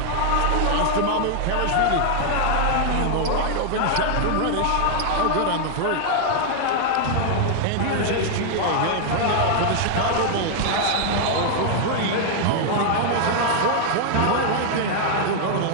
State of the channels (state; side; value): different; both; correlation 0.00